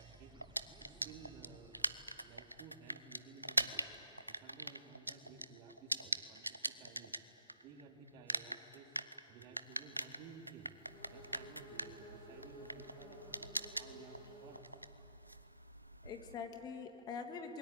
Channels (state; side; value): inverted; both; correlation -0.77